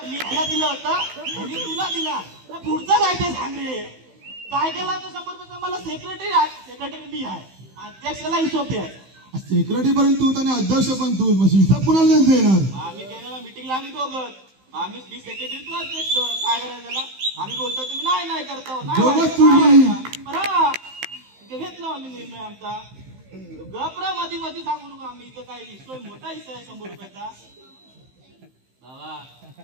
मी ह्याला दिलं होतं ह्यानी तुला दिला पुढचं काय ते सांग रे काय केला तर 100 रुपयाचा मला सेक्रेटरी मी आहे अध्यक्षाला हिशोब द्याय सेक्रेटरी पर्यंत तू आणि अध्यक्ष पण तू हिसाब कुणाला देणार आम्ही गेलेला मिटिंगला आम्ही दोघं आम्ही मी सेक्रेटरी तू अध्यक्ष काय करायचं त्याला आम्ही बोलतो तुम्ही नाही करतो बरं घेतलं आम्ही निर्णय आमचा गपरा मध्ये सांगू नका आम्ही इथं काय हिस्सा मोठा हिस्सा आहे 100 रुपयाचा बाबा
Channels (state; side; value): late; left; 15 ms